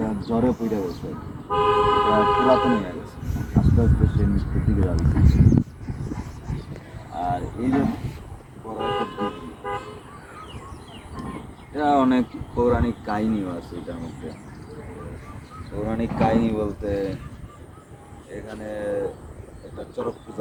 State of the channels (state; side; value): identical; both; correlation 1.00